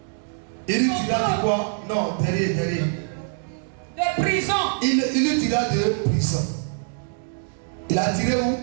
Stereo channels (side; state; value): left; silent; 63 dB below the other